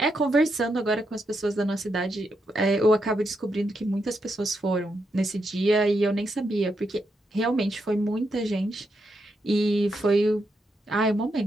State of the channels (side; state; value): both; normal; correlation 0.82